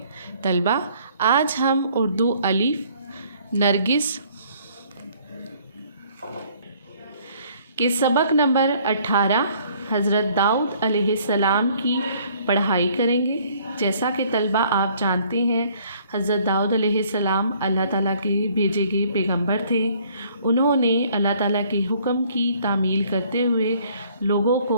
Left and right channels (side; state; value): both; inverted; correlation -0.60